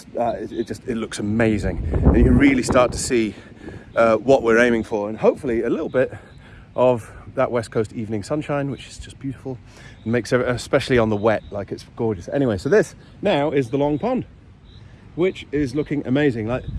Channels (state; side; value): identical; both; correlation 1.00